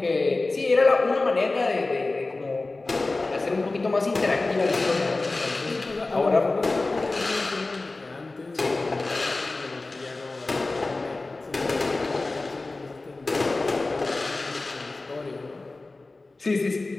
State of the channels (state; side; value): quieter; right; 3.3 dB